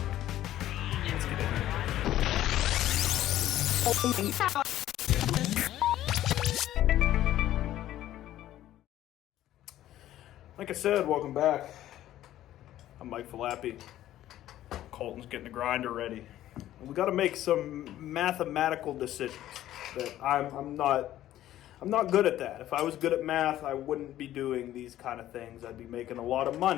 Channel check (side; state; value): right; quieter; 13.3 dB